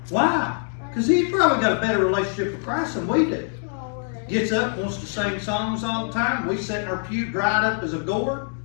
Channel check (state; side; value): silent; right; 58 dB below the other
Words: Why? Because he's probably got a better relationship with Christ than we do. Gets up, wants to sing songs all the time. We sit in our pew dried up as a gourd.